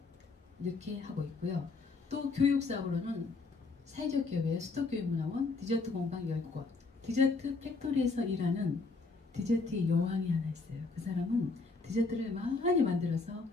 이렇게 하고 있고요. 또 교육사업으로는 사회적 기업의 수도교육문화원, 디저트 공방 10곳, 디저트 팩토리에서 일하는 디저트의 여왕이 하나 있어요. 그 사람은 디저트를 많이 만들어서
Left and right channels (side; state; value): right; quieter; 3.9 dB